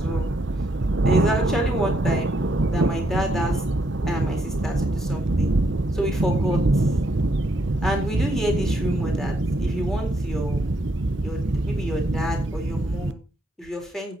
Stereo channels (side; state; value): both; normal; correlation 0.75